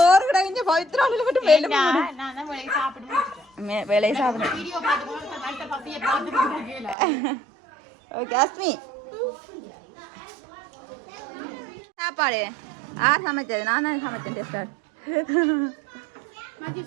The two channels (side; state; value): left; drops out; at 7.0 s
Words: கிடக்குங்க பவித்ராவில் மட்டும் வேலையை சாப்பிடுங்க. ஓகே அஸ்மி சாப்பாடு யார் சமைச்சது? நான் தான் சமைச்சேன் டெஸ்டர்.